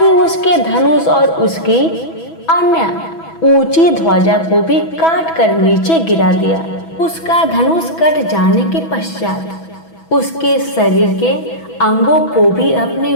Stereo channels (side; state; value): right; late; 6.1 ms